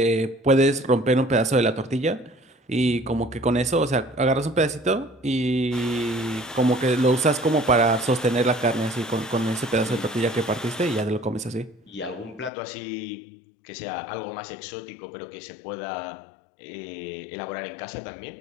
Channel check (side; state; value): right; drops out; at 12.5 s